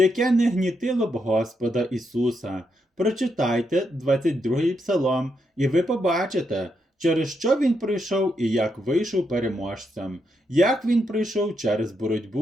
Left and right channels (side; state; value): both; normal; correlation 0.81